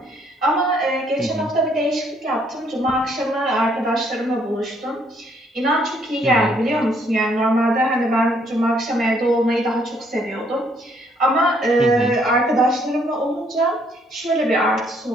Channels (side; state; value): both; normal; correlation 0.68